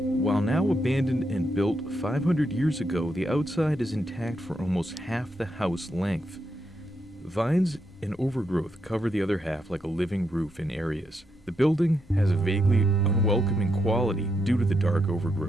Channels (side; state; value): both; normal; correlation 0.81